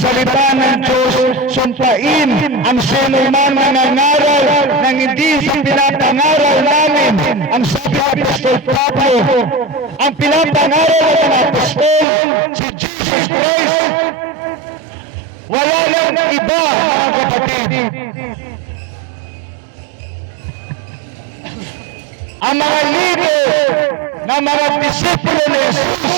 ng Diyos, sumpain ang sinuman na nangaral ng hindi sa pinapangaral namin. Ang sabi ng Apostol Pablo, ang pinapangaral ng Apostol, si Jesus Christ, wala lang iba, mga kapatid. Ang mga lider na mga disipulo ni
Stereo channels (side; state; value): left; drops out; at 12.1 s